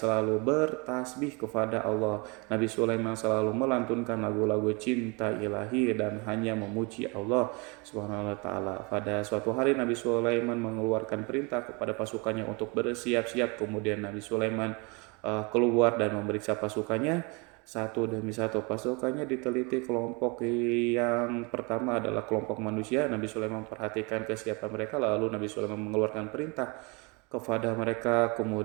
bertasbih kepada Allah. Nabi Sulaiman selalu melantunkan lagu-lagu cinta ilahi dan hanya memuji Allah Subhanahu wa taala. Pada suatu hari Nabi Sulaiman mengeluarkan perintah kepada pasukannya untuk bersiap-siap. Kemudian Nabi Sulaiman keluar dan memeriksa pasukannya satu demi satu. Pasukannya diteliti. Kelompok yang pertama adalah kelompok manusia. Nabi Sulaiman memperhatikan kesiapan mereka, lalu Nabi Sulaiman mengeluarkan perintah kepada mereka.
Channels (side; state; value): left; quieter; 29.7 dB